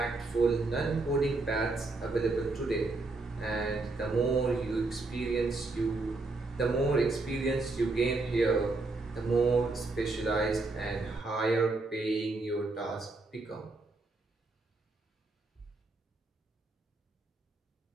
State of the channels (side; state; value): left; quieter; 3.4 dB